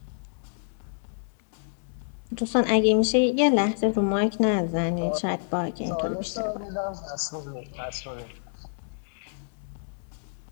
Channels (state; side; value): silent; right; digital silence